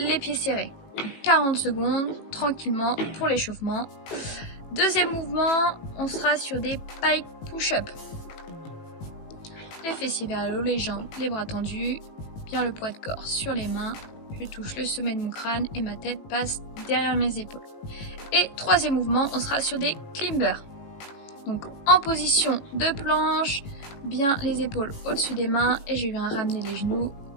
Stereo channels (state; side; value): late; right; 18 ms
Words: pieds serrés. 40 secondes, tranquillement, pour l'échauffement. Deuxième mouvement, on sera sur des pike push-up. Les fessiers vers le haut, les jambes, les bras tendus, bien le poids de corps sur les mains. Je touche le sommet de mon crâne et ma tête passe derrière mes épaules. Et troisième mouvement, on sera sur des climbers. Donc en position de planche, bien les épaules au-dessus des mains et je viens ramener les genoux